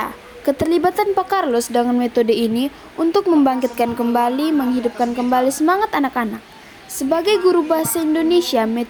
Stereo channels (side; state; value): both; identical; correlation 1.00